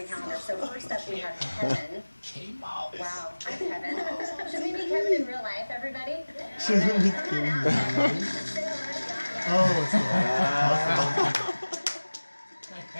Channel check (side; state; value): both; inverted; correlation -1.00